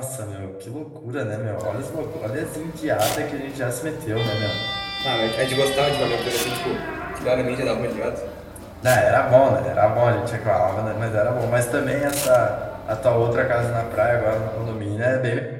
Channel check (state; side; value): identical; both; correlation 1.00